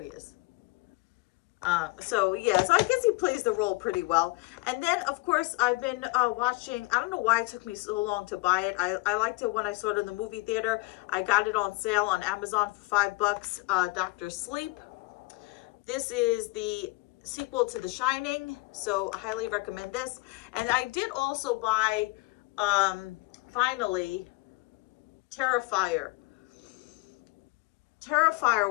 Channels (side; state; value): right; quieter; 23.7 dB